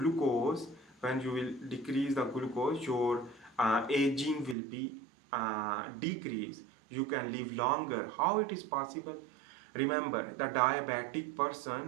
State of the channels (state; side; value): drops out; left; at 4.5 s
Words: when you will decrease the glucose, your aging will be decreased. You can live longer. How it is possible? Remember the diabetic